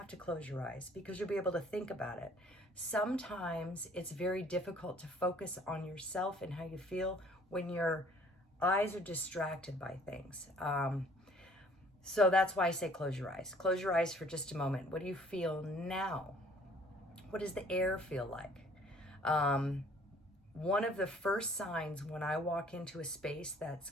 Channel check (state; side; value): normal; both; correlation 0.56